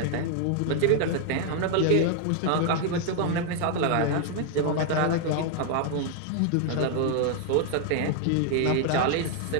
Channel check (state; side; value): different; both; correlation 0.00